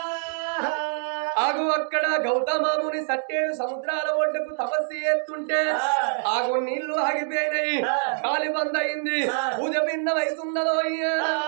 ఆగు అక్కడ గౌతమాముని సట్టేడు సముద్రాల ఒడ్డుకు తపస్సు చేస్తుంటే ఆగు నీళ్లు ఆగిపోయినాయి గాలి బంద్ అయింది పూజ భిన్నమవుతున్నదో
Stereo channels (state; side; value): silent; left; digital silence